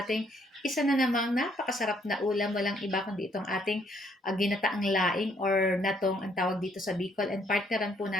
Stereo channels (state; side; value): normal; both; correlation 0.68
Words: isa na namang napakasarap na ulam. Walang iba kundi itong ating ginataang laing or natong ang tawag dito sa Bicol, and partneran po